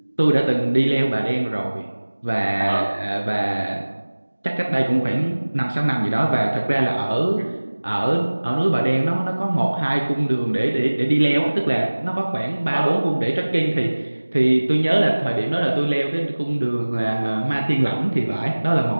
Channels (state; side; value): inverted; both; correlation -1.00